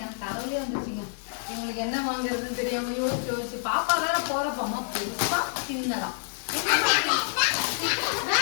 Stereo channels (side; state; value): right; silent; digital silence